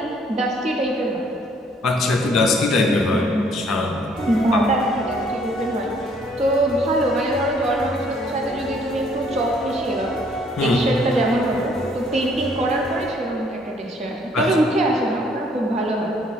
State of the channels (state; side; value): normal; both; correlation 0.63